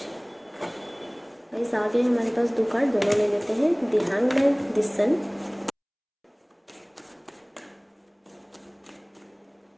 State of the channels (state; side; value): identical; both; correlation 1.00